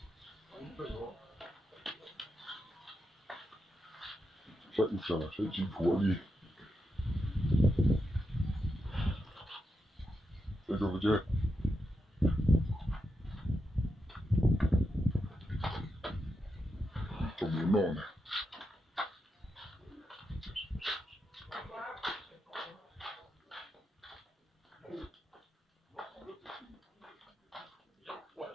sẽ chỉ thua đi这就不接，怎么弄呢？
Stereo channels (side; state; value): both; normal; correlation 0.86